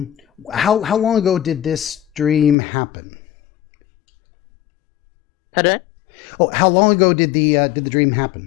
long ago did this dream happen? Pardon? Oh, how long ago did the dream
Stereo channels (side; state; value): right; drops out; at 2.6 s